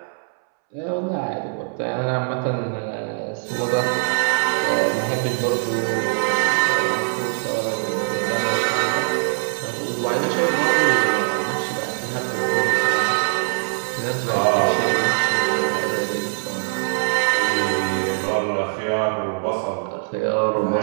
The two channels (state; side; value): silent; left; 64 dB below the other